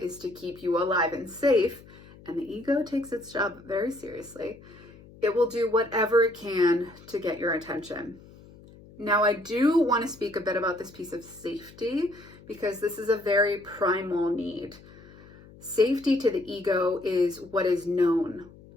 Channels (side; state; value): left; noise; hum, 22 dB below the sound